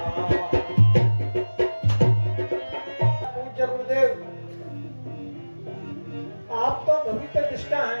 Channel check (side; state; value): both; inverted; correlation -1.00